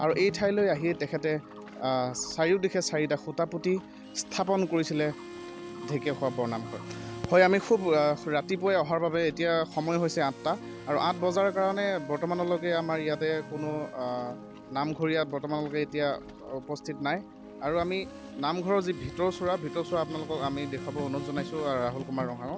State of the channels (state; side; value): identical; both; correlation 1.00